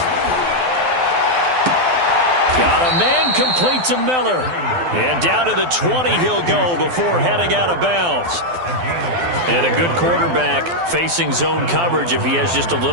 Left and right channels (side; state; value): left; late; 12 ms